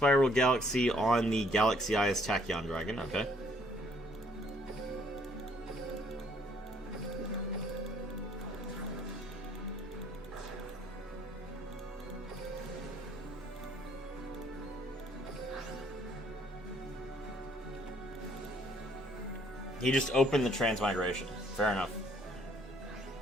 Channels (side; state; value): both; normal; correlation 0.64